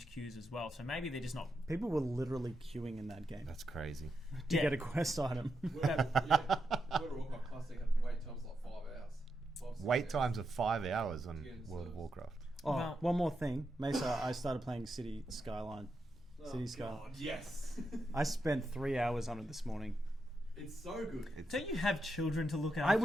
queues as well. So maybe they're just not. People were literally queuing in that game That's crazy. to Yeah. get a quest item. World of Warcraft Classic had wait times like 5 hours. 5-6 Wait hours. times of 5 hours on Yeah, World of so- Warcraft. Oh, Well- one more thing, Mesa. I started playing City Skyline. City Skyline. God, yes. I spent 3 hours on it this morning. It's so good. Don't you have children to look after? I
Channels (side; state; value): both; normal; correlation 0.85